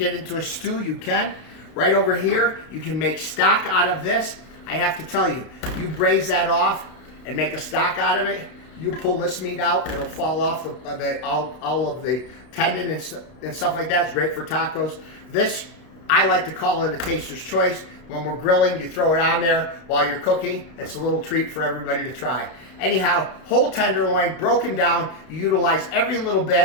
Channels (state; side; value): late; right; 32 ms